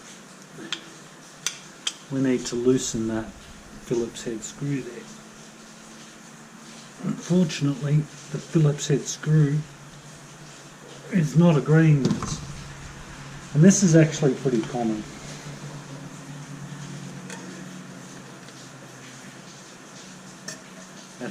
We need to loosen that Phillips head screw there. Unfortunately, the Phillips head screw is not agreeing with us. And this is actually pretty common. It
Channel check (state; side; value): identical; both; correlation 1.00